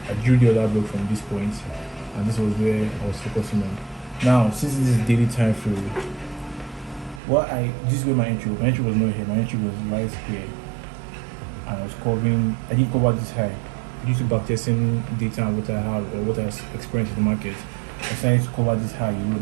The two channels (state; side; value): drops out; left; at 7.2 s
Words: I drew the other block from this point, and this was where I was focusing on. Now, since this is daily time frame, this is where my entry was. My entry was not here. My entry was right here, and I was covering. I didn't cover this high due to backtesting data and what I have or what I experienced in the market. I decided to cover this high